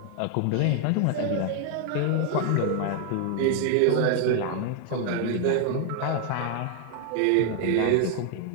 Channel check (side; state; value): both; different; correlation 0.00